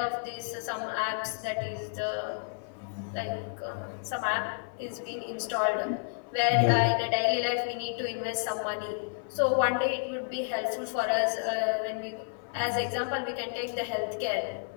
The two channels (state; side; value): silent; right; 57 dB below the other